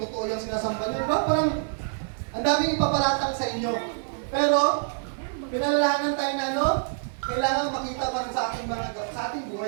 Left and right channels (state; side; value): silent; left; digital silence